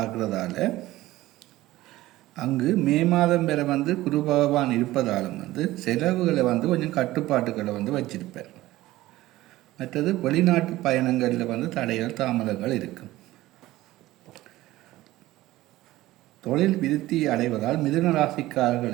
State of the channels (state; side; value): quieter; left; 16.9 dB